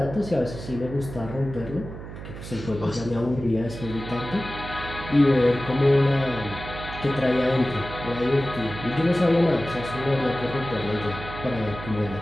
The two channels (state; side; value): noise; right; hum, 11 dB below the sound